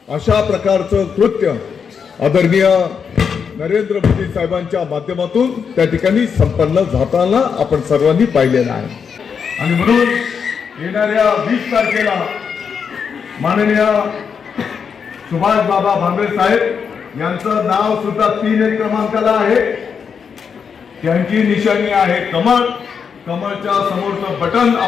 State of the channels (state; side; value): quieter; right; 6.5 dB